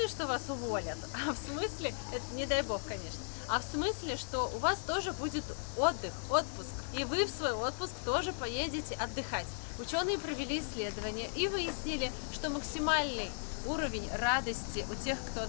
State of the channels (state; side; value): silent; right; digital silence